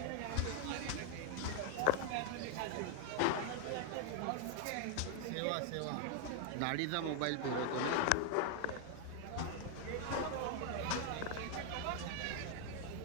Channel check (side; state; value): both; different; correlation 0.00